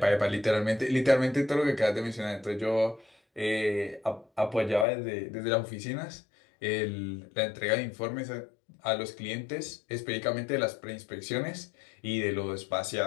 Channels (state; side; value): drops out; right; at 4.9 s